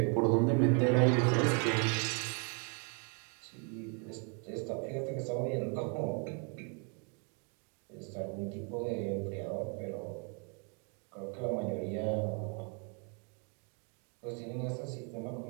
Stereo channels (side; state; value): left; quieter; 37.7 dB